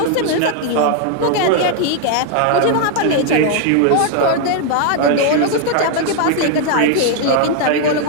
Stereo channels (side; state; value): both; different; correlation 0.00